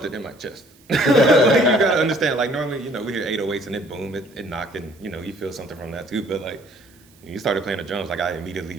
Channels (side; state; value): right; noise; hiss, 29 dB below the sound